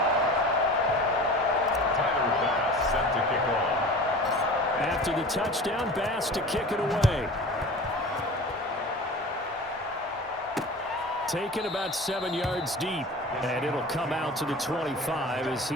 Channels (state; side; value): normal; both; correlation 0.38